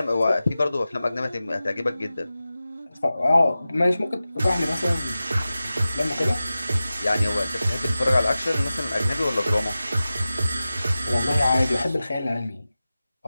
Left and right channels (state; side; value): inverted; both; correlation -0.95